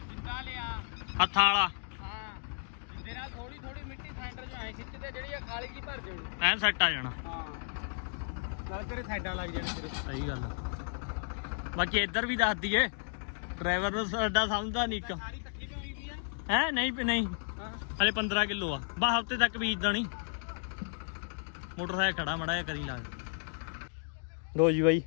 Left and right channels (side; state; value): right; silent; digital silence